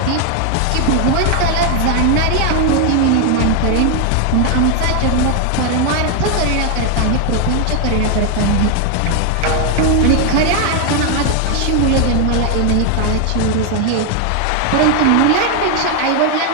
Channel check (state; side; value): different; both; correlation 0.01